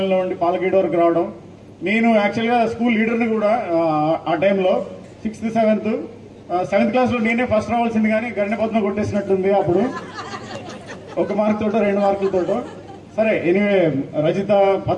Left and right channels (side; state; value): both; identical; correlation 1.00